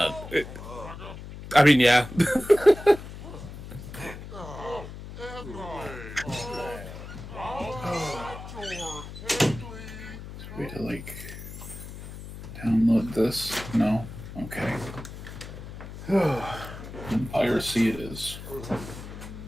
I mean, yeah. Way to like download this? No. Okay. Piracy it is.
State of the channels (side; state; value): left; noise; hum, 12 dB below the sound